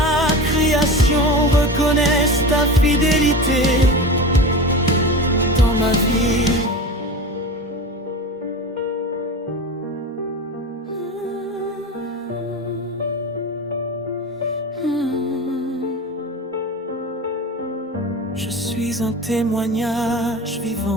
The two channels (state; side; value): normal; both; correlation 0.29